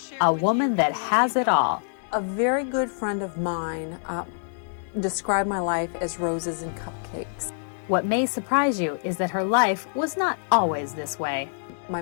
a woman that has it all. A very good friend of mine described my life as roses and cupcakes. What may surprise you is that her life was not always this way. My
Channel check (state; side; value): silent; right; 61 dB below the other